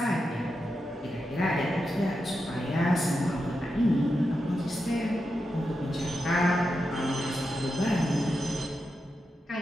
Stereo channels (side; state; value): both; normal; correlation 0.88